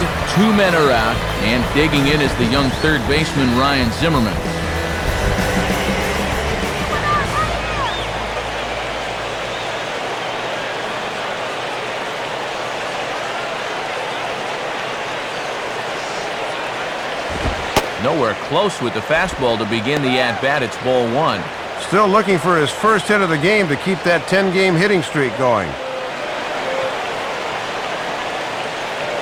2 men are out, and digging in is the young third baseman Ryan Zimmerman. Nowhere close with the fastball to begin the at-bat. It's ball 1. Still looking for his first hit of the game to keep that 10-game hitting streak going.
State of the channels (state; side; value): identical; both; correlation 1.00